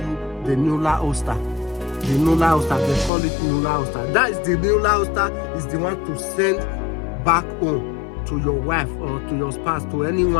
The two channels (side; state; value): right; drops out; at 3.1 s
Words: the nulla osta. The nulla osta, they call it nulla osta. That is the nulla osta, is the one to send back home to your wife or to your spouse, to